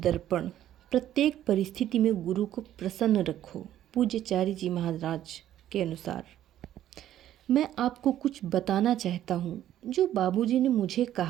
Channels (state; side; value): quieter; left; 12.1 dB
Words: प्रत्येक परिस्थिति में गुरु को प्रसन्न रखो। पूज्यचार्य जी महाराज के अनुसार मैं आपको कुछ बताना चाहता हूँ जो बाबूजी ने मुझे